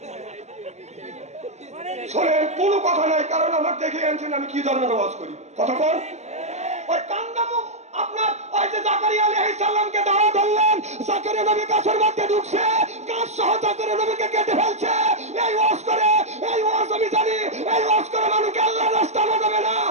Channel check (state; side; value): late; left; 0.33 ms